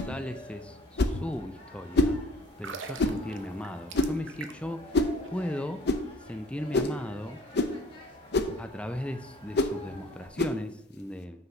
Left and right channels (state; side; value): normal; both; correlation 0.50